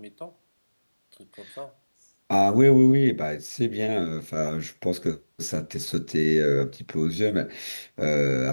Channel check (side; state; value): both; inverted; correlation -1.00